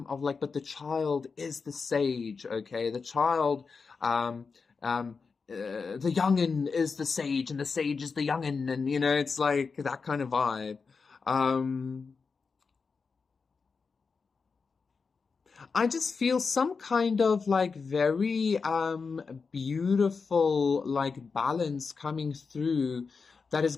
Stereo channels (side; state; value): right; quieter; 5.0 dB